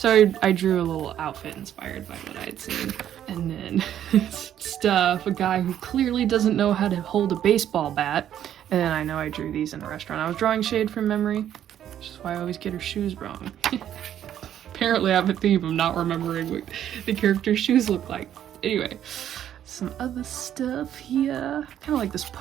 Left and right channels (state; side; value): quieter; left; 10.6 dB